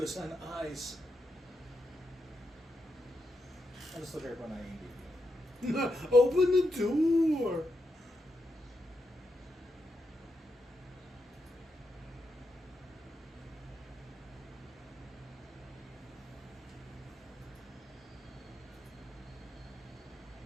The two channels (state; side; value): normal; both; correlation 0.84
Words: on eyes. I just look at everyone IMDb. Open the door.